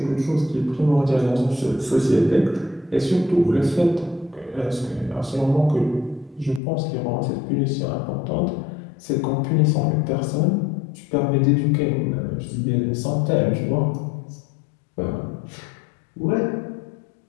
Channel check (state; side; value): drops out; right; at 6.6 s